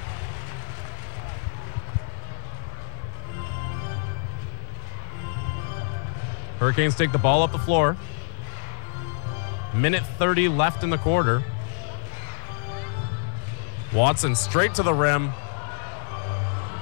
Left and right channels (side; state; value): right; silent; 61 dB below the other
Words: Hurricanes take the ball up the floor. Minute 30 left in the quarter. Watson straight to the rim.